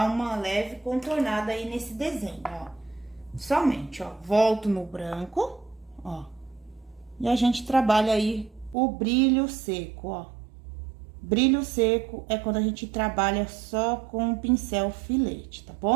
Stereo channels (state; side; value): drops out; left; at 8.8 s